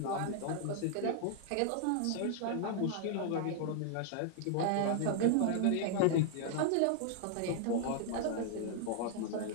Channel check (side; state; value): both; different; correlation 0.00